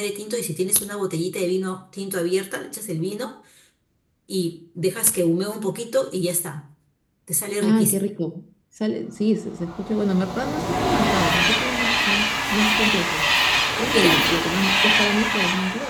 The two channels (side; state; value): both; identical; correlation 1.00